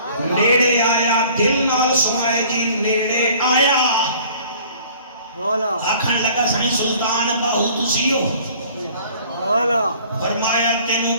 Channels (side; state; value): both; inverted; correlation -0.52